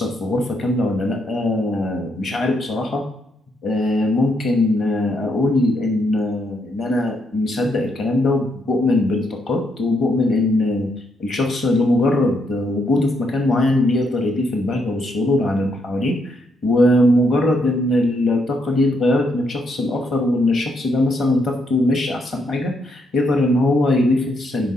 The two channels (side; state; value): both; normal; correlation 0.77